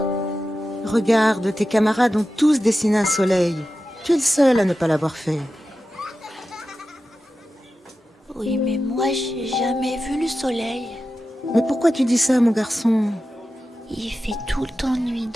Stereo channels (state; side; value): normal; both; correlation 0.93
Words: Regarde, tes camarades ont tous dessiné un soleil. Tu es le seul à ne pas l'avoir fait. Oui, mais moi, j'ai jamais vu le soleil. Mais pourquoi tu dis ça, mon garçon? Il fait tout le temps nuit